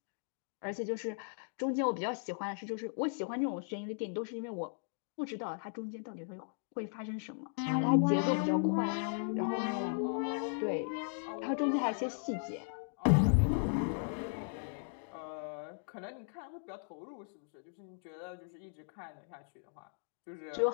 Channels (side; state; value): right; silent; digital silence